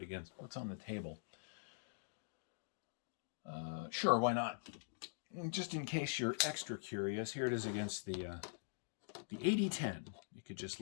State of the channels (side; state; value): right; silent; digital silence